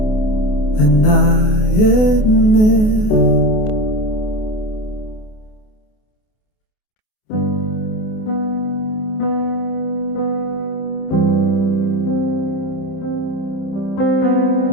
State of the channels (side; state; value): right; late; 28 ms